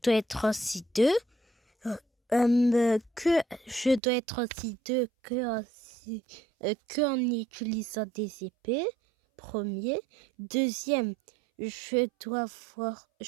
être aussi deux. Que je dois être aussi deux que en utilisant des épées. Premier. Deuxième, je dois voir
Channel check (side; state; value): left; drops out; at 4.0 s